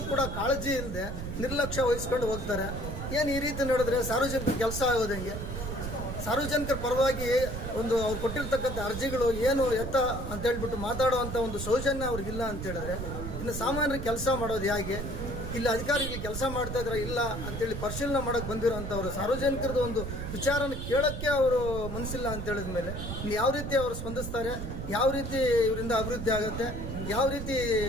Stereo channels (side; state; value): right; noise; rumble, 6 dB below the sound